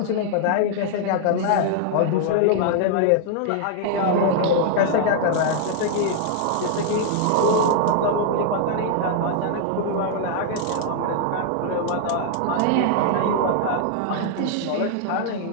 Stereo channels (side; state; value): both; different; correlation 0.00